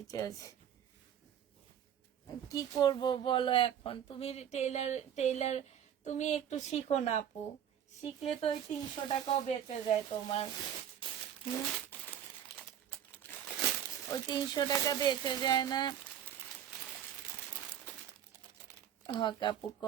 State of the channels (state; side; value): quieter; left; 9.7 dB